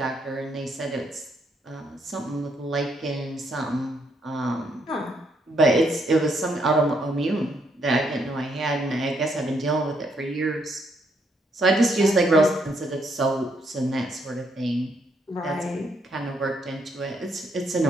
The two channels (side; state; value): both; normal; correlation 0.74